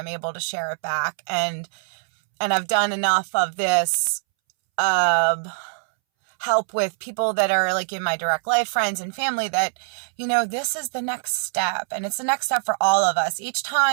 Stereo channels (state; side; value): silent; left; 63 dB below the other